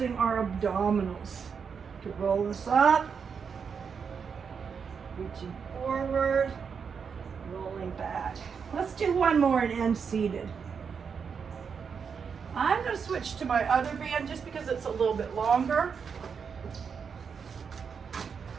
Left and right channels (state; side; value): quieter; left; 6.3 dB